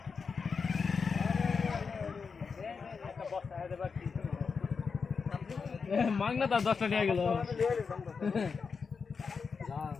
মাগনা তো 10 টাকা গেল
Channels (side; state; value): right; quieter; 5.4 dB